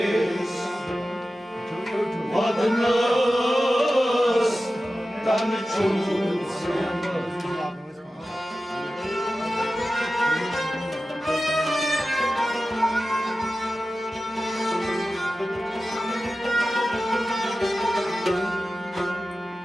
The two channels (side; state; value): both; normal; correlation 0.94